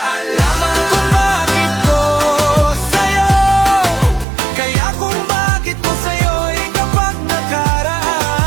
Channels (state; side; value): drops out; left; at 4.2 s